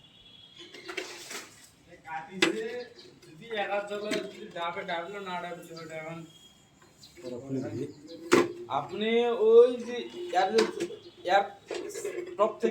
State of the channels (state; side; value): identical; both; correlation 1.00